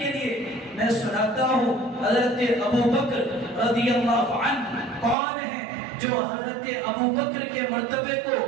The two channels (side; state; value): left; drops out; at 5.2 s